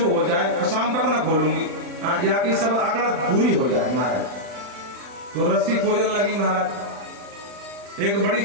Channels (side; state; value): left; late; 40 ms